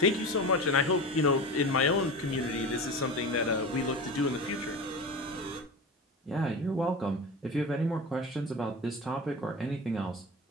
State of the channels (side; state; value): both; normal; correlation 0.29